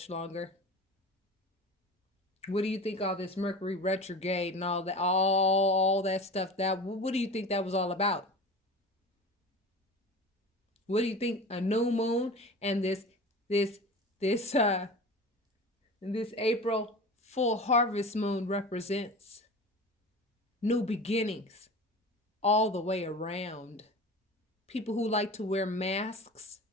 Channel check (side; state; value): both; normal; correlation 0.34